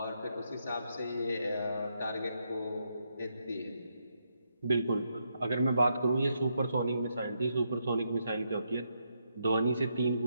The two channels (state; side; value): inverted; both; correlation -0.79